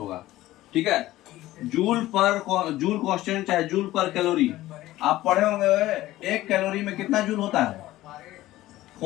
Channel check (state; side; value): quieter; right; 16.0 dB